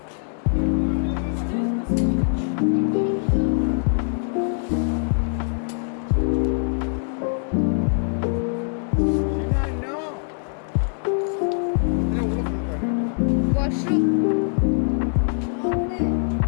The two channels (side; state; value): right; silent; digital silence